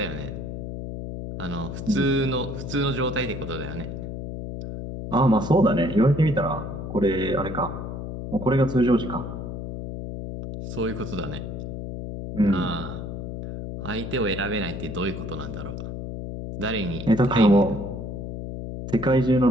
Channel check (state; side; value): noise; left; hum, 7 dB below the sound